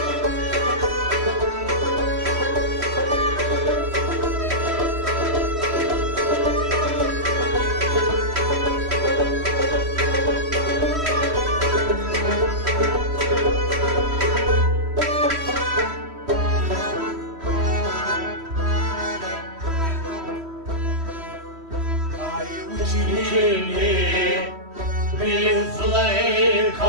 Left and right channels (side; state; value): left; late; 3.1 ms